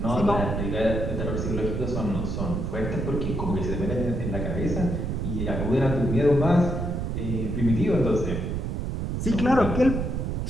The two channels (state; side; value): noise; right; rumble, 2 dB below the sound